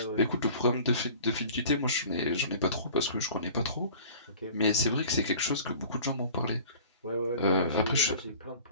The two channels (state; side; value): inverted; both; correlation -0.45